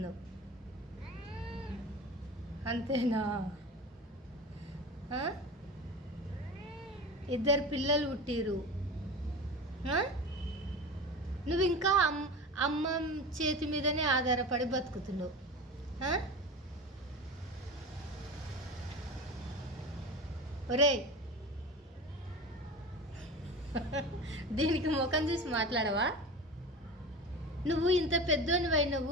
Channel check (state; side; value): normal; both; correlation 0.31